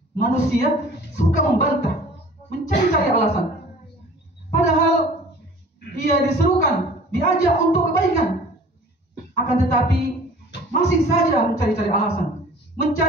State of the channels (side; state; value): both; normal; correlation 0.47